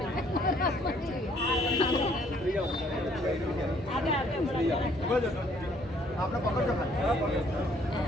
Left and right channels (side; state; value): both; normal; correlation 0.63